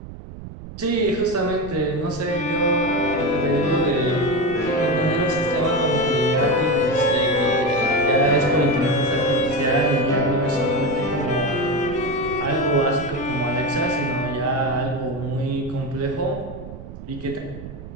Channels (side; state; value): right; noise; rumble, 13 dB below the sound